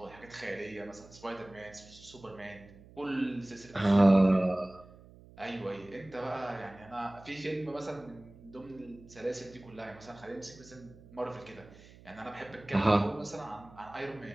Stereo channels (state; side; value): noise; right; hum, 21 dB below the sound